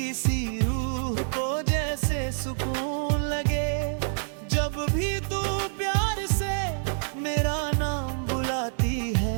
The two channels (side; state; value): left; silent; digital silence